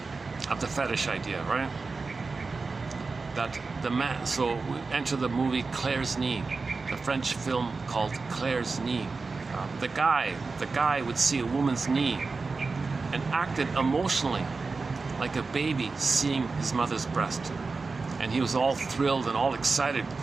of the fetish idea, right? That the man. So we enter the movie Claire's Knee, the French film called Claire's Knee. The guy would see a woman's knee and acted emotionally like a baby seeing his mother's breast, and he was all thrilled and all excited,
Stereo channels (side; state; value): left; quieter; 4.1 dB